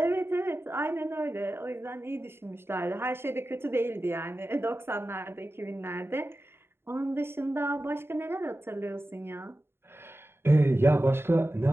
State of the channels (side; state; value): left; late; 0.11 ms